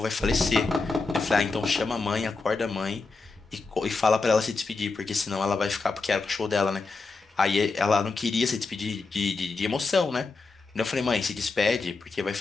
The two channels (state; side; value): quieter; right; 4.0 dB